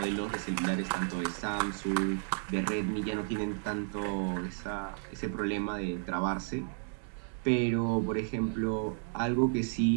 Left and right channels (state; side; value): silent; left; 56 dB below the other